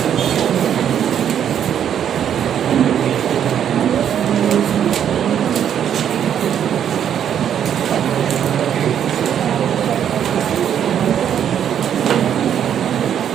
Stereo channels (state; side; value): quieter; left; 9.2 dB